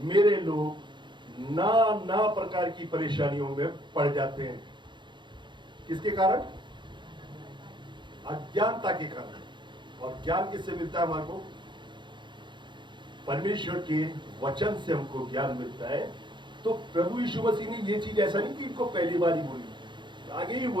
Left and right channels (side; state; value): left; late; 0.23 ms